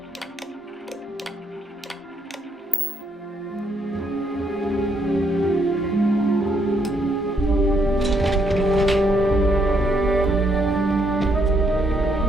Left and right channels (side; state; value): both; normal; correlation 0.73